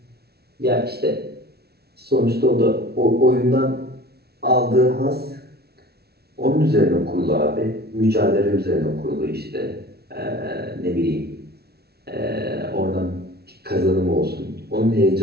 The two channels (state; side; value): late; left; 0.46 ms